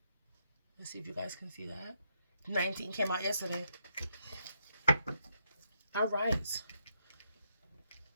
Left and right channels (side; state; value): both; inverted; correlation -0.78